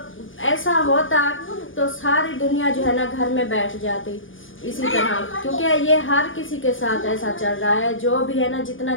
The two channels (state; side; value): late; right; 0.58 ms